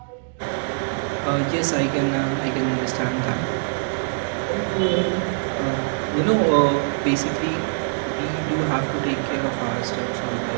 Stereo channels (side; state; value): left; silent; digital silence